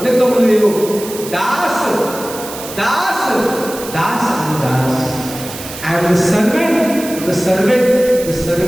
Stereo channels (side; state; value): right; noise; hiss, 12 dB below the sound